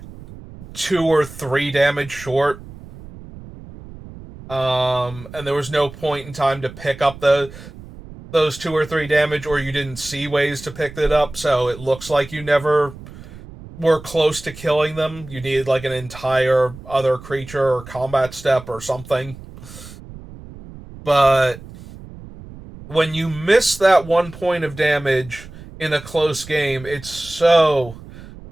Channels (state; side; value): noise; right; rumble, 16 dB below the sound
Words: 2 or 3 damage short. And there was no point in time to pick up those 2 or 3 damage, or you didn't see ways to pick it up, so it looks like you never were close to killing them. You needed like an entire other creature or combat step or something. But when you miss that 1 point of damage in a close game, it's so